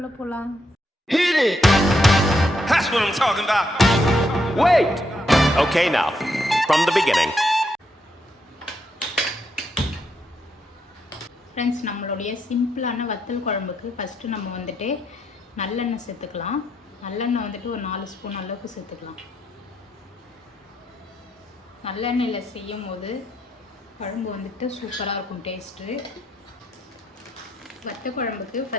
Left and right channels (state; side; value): normal; both; correlation 0.78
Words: போகலாம். Hit it! That's what I'm talking about. Wait! Okay, now, from the beginning. Friends, நம்மளுடைய சிம்பிளான வத்தல் குழம்புக்கு ஃபஸ்ட்டு நம்ம வந்துட்டு நல்லெண்ணெய் சேர்த்துக்கலாம். நல்லெண்ணெய் வந்துட்டு ஒரு 4 ஸ்பூன் அளவுக்கு சேர்த்துக்கலாம். நல்லெண்ணெயில் செய்யும் போது குழம்பு வந்துட்டு சூப்பராக இருக்கும் டேஸ்ட்டு. வத்த குழம்புக்கு